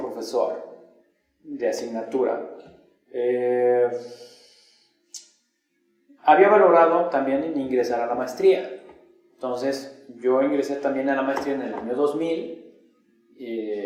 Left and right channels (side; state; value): both; identical; correlation 1.00